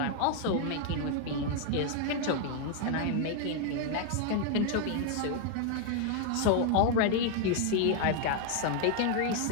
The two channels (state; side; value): different; both; correlation 0.00